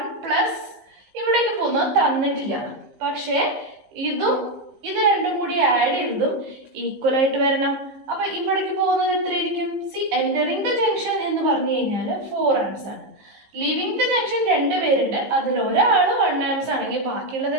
പ്ലസ് ഇവിടേക്ക് പോകുന്നത് തന്നിട്ടില്ല, പക്ഷേ ഇത് രണ്ടും കൂടി ആഡ് ചെയ്തതും ഈക്വൽ ആയിട്ട് വരണം. അപ്പൊ ഇവിടേക്ക് പോകുന്നത് എത്രയായിരിക്കും? എൻറ്ററിങ് ദ ജംഗ്ഷൻ എന്ന് പറഞ്ഞു കഴിഞ്ഞാൽ 4 ആംപ്സ് ആണ്. ലീവിങ് ദ ജംഗ്ഷൻ 2 പേരുണ്ട്, അതിൽ ഒരാൾ 1 ആംപ്സ് ആണെങ്കിൽ ബാക്കിയുള്ളത്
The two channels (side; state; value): left; late; 15 ms